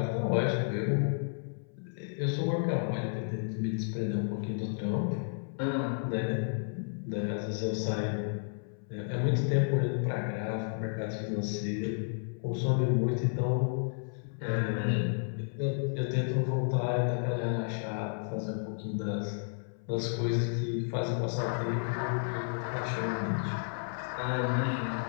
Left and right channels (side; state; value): right; silent; 56 dB below the other